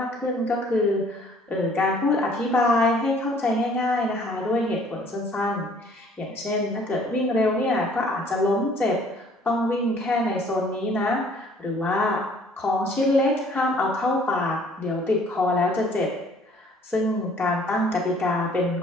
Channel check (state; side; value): normal; both; correlation 0.57